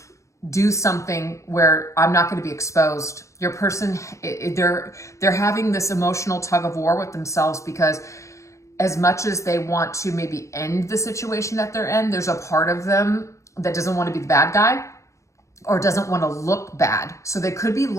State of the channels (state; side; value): late; right; 0.15 ms